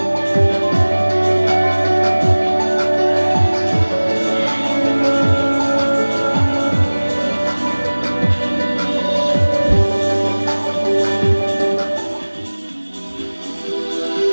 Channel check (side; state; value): both; inverted; correlation -1.00